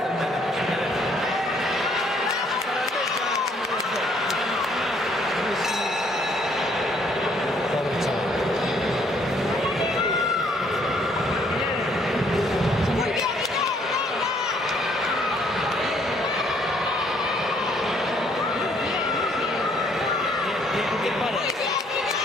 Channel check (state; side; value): normal; both; correlation 0.65